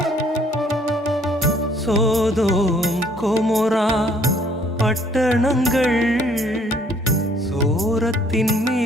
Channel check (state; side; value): normal; both; correlation 0.62